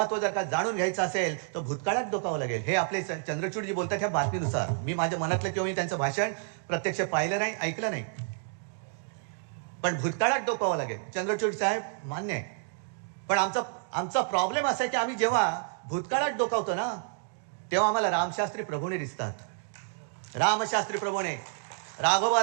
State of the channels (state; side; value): silent; left; digital silence